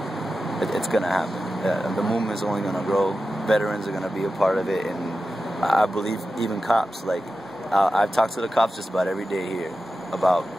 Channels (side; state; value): both; normal; correlation 0.92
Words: it's going to happen. The movement is only going to grow. Veterans are going to be a part of it, and I believe even cops. Like I've talked to the cops just about every day here about